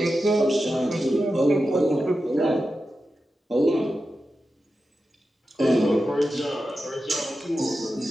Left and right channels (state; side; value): normal; both; correlation 0.91